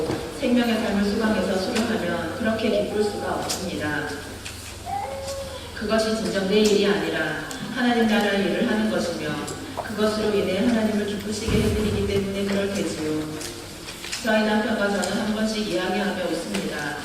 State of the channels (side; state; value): both; identical; correlation 1.00